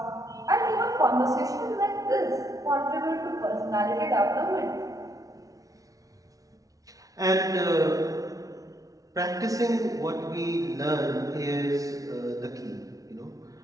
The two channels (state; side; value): late; left; 0.17 ms